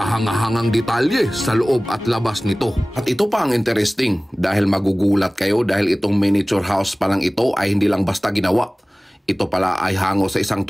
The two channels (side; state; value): both; normal; correlation 0.98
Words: detalye sa loob at labas nito. At ito pa ang interesting dahil magugulat kayo dahil itong miniature house pa lang ito ay hindi lang basta ginawa. Ito pala ay hango sa isang